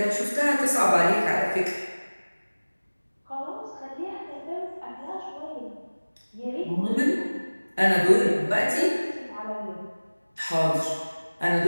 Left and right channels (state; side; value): inverted; both; correlation -1.00